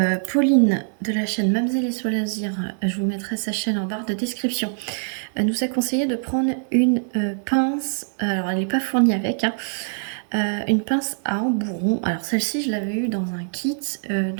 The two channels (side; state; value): left; silent; 63 dB below the other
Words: Pauline de la chaîne Mamzelle et Loisirs, je vous mettrai sa chaîne en barre de description, nous a conseillé de prendre une pince. Alors, elle n'est pas fournie avec, hein, une pince à embourron. Alors, celle-ci, je l'avais eue dans un kit